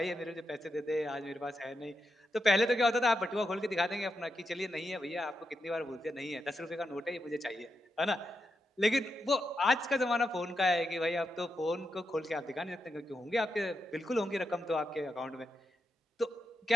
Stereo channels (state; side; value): normal; both; correlation 0.86